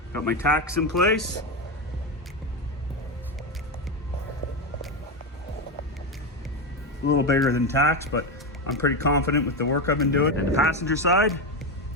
got my tacks in place. A little bigger than tacks, but I'm pretty confident with the work I've been doing. And the passenger side,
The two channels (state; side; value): normal; both; correlation 0.12